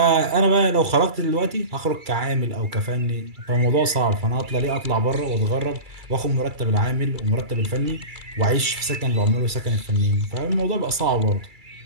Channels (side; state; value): left; late; 2.3 ms